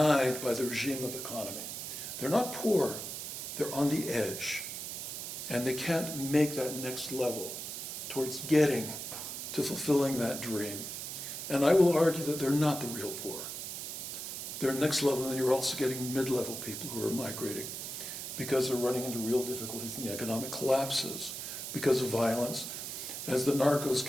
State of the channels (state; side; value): noise; right; hiss, 6 dB below the sound